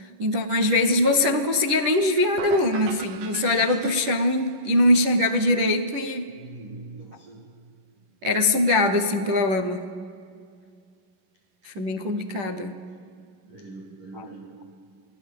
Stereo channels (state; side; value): late; left; 11 ms